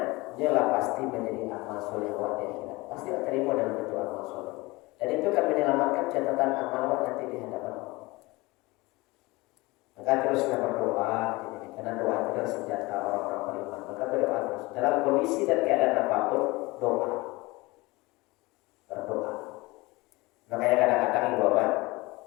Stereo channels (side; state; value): right; quieter; 22.6 dB